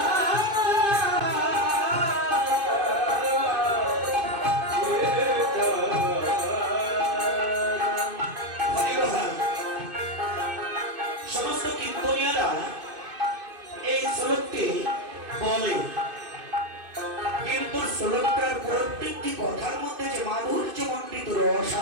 সমস্ত কীর্তনীয়রা এই শ্লোকটি বলে, কিন্তু শ্লোকটার প্রত্যেকটি কথার মধ্যে যে মাধুর্য মণ্ডিত রস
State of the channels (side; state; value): left; late; 2.5 ms